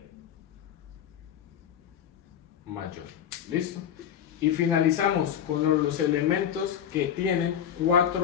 mayor. ¿Listo? Y finalizamos con los elementos que tienen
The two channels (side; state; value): right; quieter; 9.3 dB